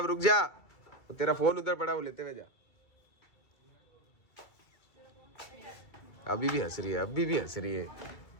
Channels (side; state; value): right; late; 2.3 ms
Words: रुक जा, वो तेरा फोन उधर पड़ा, वो लेते हुए जा। अभी भी हंस रही है, अभी भी हंस रही है।